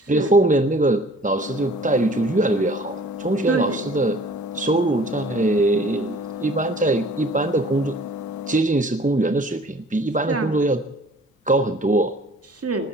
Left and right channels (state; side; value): normal; both; correlation 0.52